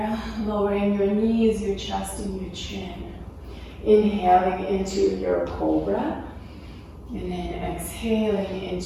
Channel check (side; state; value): both; identical; correlation 1.00